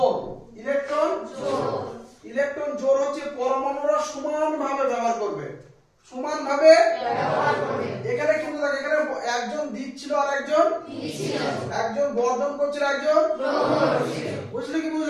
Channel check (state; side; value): identical; both; correlation 1.00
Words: ইলেকট্রন জোড়। ইলেকট্রন জোড় হচ্ছে পরমাণুরা সমানভাবে ব্যবহার করবে। সমানভাবে ব্যবহার করবে। এখানে কিন্তু দেখো এখানে একজন দিচ্ছিল আর একজন নিচ্ছিল। একজন বর্ধন করছিল একজন গ্রহণ করছিল। বুঝলে কি